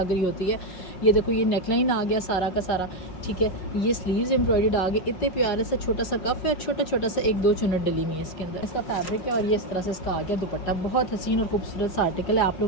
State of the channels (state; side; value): late; right; 5.4 ms